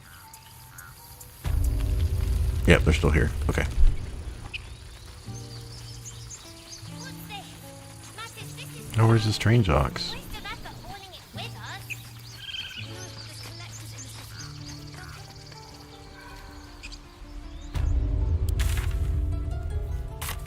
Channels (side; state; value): both; identical; correlation 1.00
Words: Yep, they're still here. Okay. Oh, where's the strange ox?